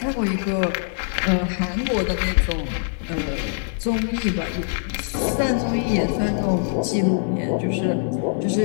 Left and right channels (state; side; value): silent; right; 63 dB below the other